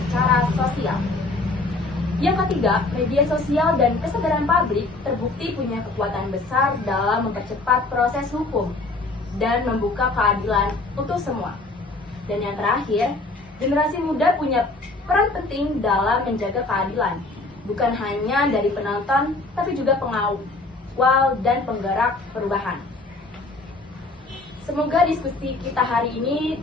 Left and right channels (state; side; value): quieter; right; 3.2 dB